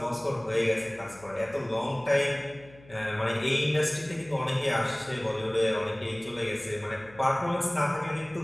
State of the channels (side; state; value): left; noise; hum, 23 dB below the sound